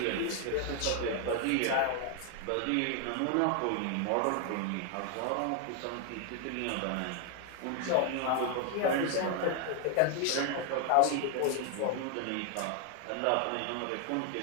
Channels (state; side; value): different; both; correlation 0.00